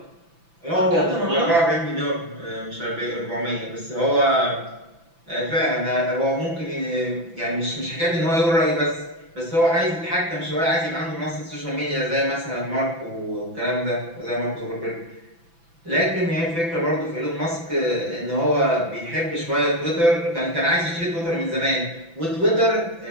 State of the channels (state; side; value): late; left; 6.0 ms